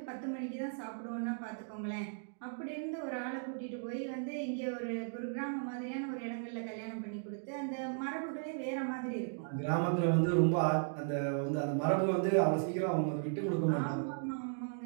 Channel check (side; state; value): left; silent; digital silence